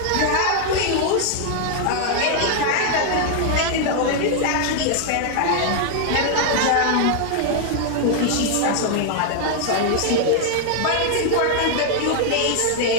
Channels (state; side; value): different; both; correlation 0.00